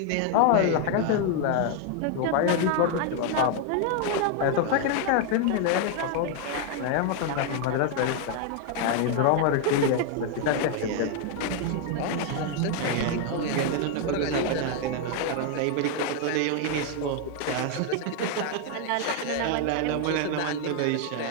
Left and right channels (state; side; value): different; both; correlation 0.00